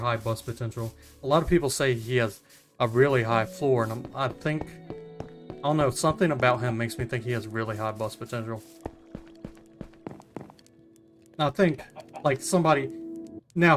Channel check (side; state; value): both; identical; correlation 1.00